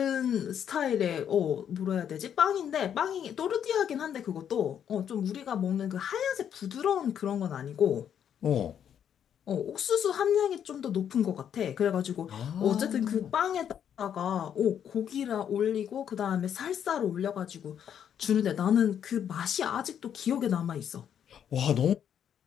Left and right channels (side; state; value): right; quieter; 9.0 dB